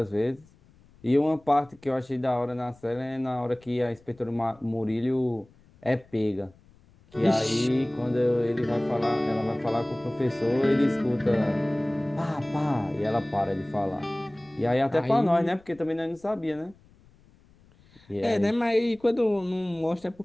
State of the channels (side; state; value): left; noise; rumble, 29 dB below the sound